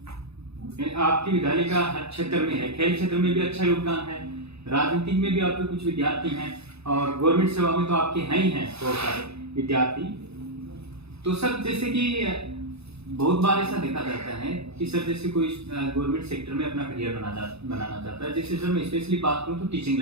आपके विद्यालय का हर क्षेत्र में है, खेल क्षेत्र में भी अच्छा योगदान है, राजनीतिक में भी आपके कुछ विद्यार्थी हैं, और गवर्नमेंट सेवा में तो आपके हैं ही हैं बहुत सारे विद्यार्थी। तो सर जैसे कि बहुत बार ऐसा देखा जाता है कि सर जैसे कोई गवर्नमेंट सेक्टर में अपना करियर बनाना चाहता है, जैसे सर मैं स्पेशली बात करूं तो टीचिंग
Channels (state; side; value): late; left; 0.79 ms